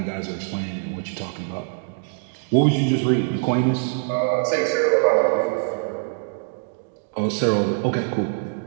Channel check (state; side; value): silent; left; 63 dB below the other